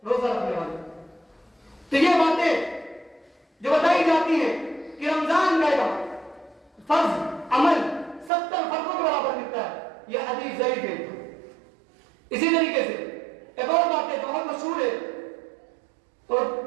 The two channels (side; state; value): left; drops out; at 8.3 s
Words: روزہ رکھنے والے. تو یہ باتیں جو بتائی جاتی ہیں کہ رمضان کا فرض عمل 70 فرضوں کے برابر ملتا ہے، یہ حدیث ضعیف ہے. اسی طریقے سے ایک اور بات ہے بہت مشہور ہے اور